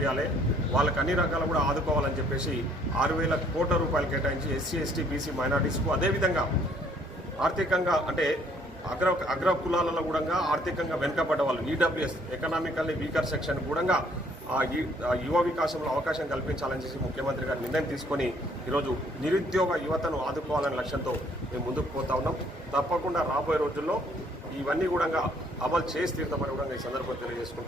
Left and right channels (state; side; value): normal; both; correlation 0.63